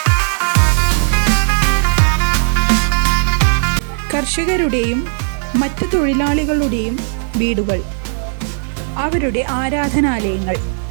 കർഷകരുടെയും മറ്റ് തൊഴിലാളികളുടെയും വീടുകൾ, അവരുടെ ആരാധനാലയങ്ങൾ,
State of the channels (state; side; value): silent; left; digital silence